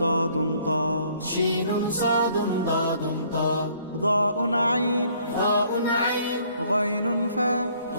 طاء شين صاد ضاد طاء ضاء عين ضاء عين غين فاء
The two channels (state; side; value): inverted; both; correlation -0.62